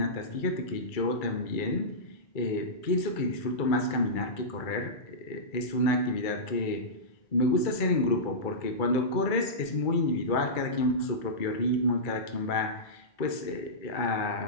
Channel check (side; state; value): right; late; 2.3 ms